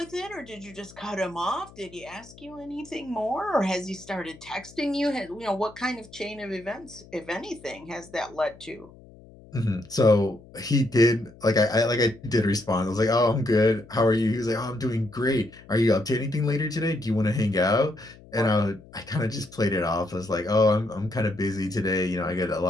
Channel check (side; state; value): left; noise; hum, 22 dB below the sound